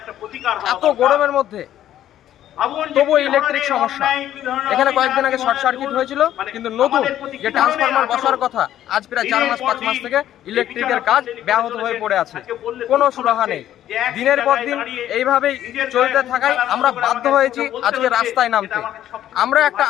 এত গরমের মধ্যে তবু ইলেকট্রিক সমস্যা। এখানে কয়েকদিন আগে শর্ট সার্কিট হয়েছিল, কিন্তু নতুন যে ট্রান্সফরমার বসার কথা, আজ প্রায় 4-5 মাস থেকে ইলেকট্রিকের কাজ ব্যাহত হয়ে পড়ে আছে, কোনো সুরাহা নেই। দিনের পর দিন এইভাবেই চলতে থাকায় আমরা বাধ্য হয়েছি আজকে রাস্তায় নামতে। আমরা একটা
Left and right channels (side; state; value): right; quieter; 11.9 dB